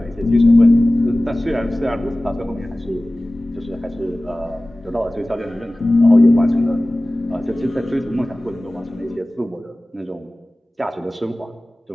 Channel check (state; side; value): normal; both; correlation 0.98